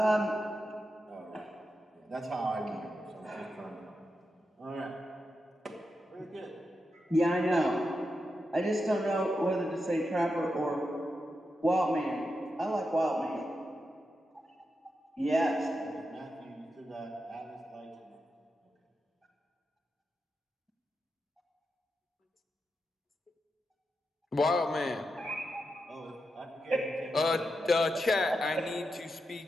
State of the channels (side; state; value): both; normal; correlation 0.87